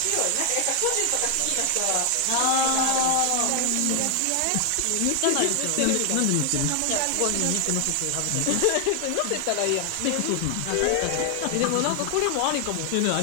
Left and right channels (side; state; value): both; different; correlation 0.00